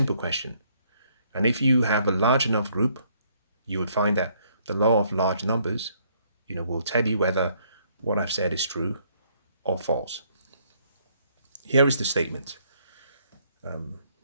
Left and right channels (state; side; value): inverted; both; correlation -0.67